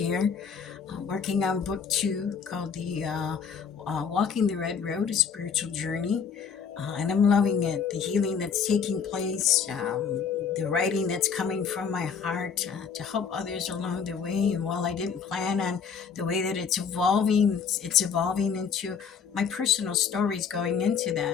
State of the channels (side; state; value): right; quieter; 6.5 dB